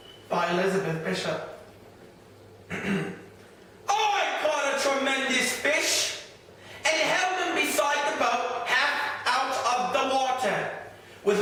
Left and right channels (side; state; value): both; identical; correlation 1.00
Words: by Elizabeth Bishop. I caught a tremendous fish and held him beside the boat, half out of the water,